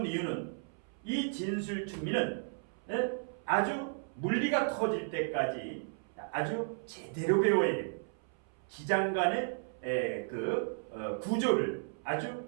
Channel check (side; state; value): left; silent; 55 dB below the other